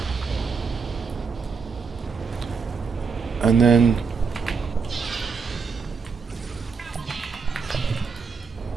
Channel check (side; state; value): left; quieter; 5.2 dB